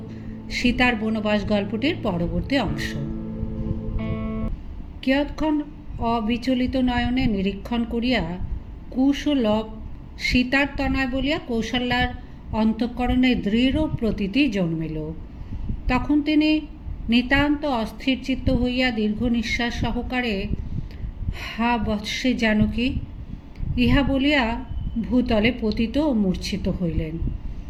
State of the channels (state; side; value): identical; both; correlation 1.00